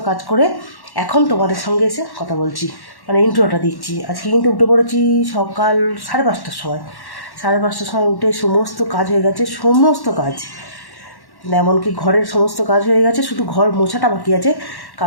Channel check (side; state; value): right; late; 1.1 ms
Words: কাজ করে এখন তোমাদের সঙ্গে এসে কথা বলছি, মানে ইন্ট্রোটা দিচ্ছি। আজকে কিন্তু উঠে পড়েছি সকাল 5:30টার সময়। 5:30টার সময় উঠে সমস্ত কাজ হয়ে গেছে, সমস্ত কাজ এমনকি ঘরের সমস্ত কাজ হয়ে গেছে, শুধু ঘর মোছাটা বাকি আছে,